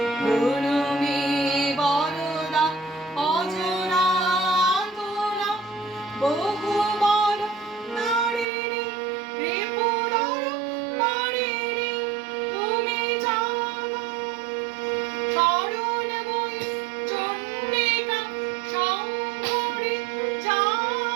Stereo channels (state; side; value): drops out; left; at 8.5 s